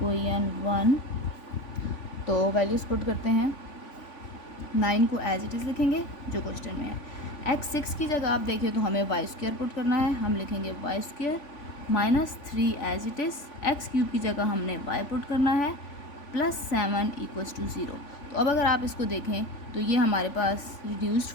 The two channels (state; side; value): late; right; 3.5 ms